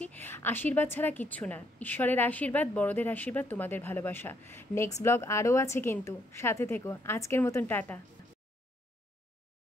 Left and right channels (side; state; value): both; normal; correlation 0.71